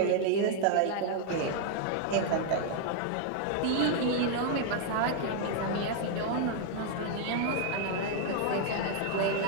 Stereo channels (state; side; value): different; both; correlation 0.00